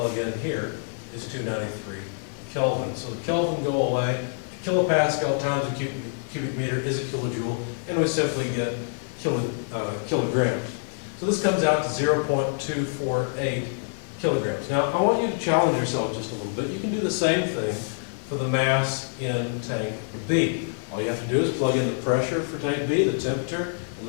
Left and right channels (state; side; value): silent; right; 56 dB below the other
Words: in here, is 293 Kelvin. So the Kelvin go away. A kilopascal times a cubic meter is a kilojoule, and we simply get kilograms. So this comes out to 0.248 kilograms. Now, I want you to challenge yourself just a little bit. You can do the same thing for the mass in tank B. All you have to do is plug in the pressure for tank B, the temperature, and